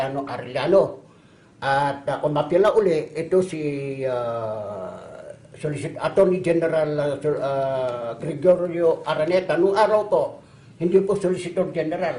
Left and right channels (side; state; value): both; identical; correlation 1.00